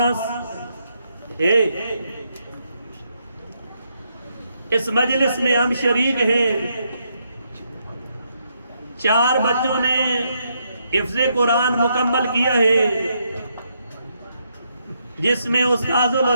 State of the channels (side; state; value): both; inverted; correlation -0.77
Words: ہے، اس مجلس میں ہم شریک ہیں۔ 4 بچوں نے حفظ قرآن مکمل کیا ہے، جس میں استاذ